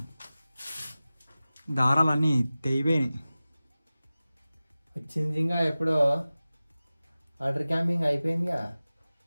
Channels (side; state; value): both; inverted; correlation -0.97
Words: దారాలన్నీ తెగిపోయినాయి. వచ్చింది ఇంకా ఎప్పుడో వాటర్ క్యాంపింగ్ అయిపోయిందిగా.